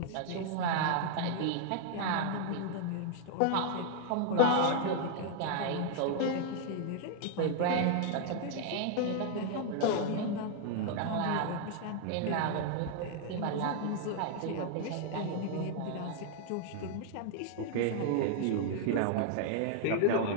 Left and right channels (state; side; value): different; both; correlation -0.01